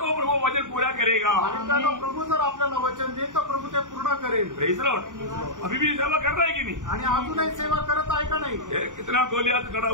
प्रभु वचन पूरा करेगा. आणि त्यानं प्रभू जर आपल्याला वचन देईल तर प्रभू ते पूर्ण करेल. Praise Lord. अभी भी सेवा कर रहा है कि नहीं? आणि अजूनही सेवा करत आहे का नाही? ये कितना गोलियात खड़ा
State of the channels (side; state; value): left; late; 0.87 ms